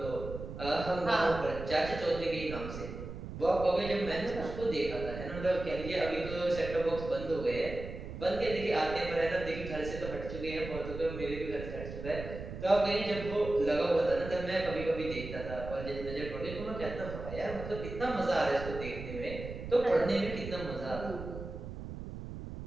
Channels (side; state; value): right; noise; rumble, 9 dB below the sound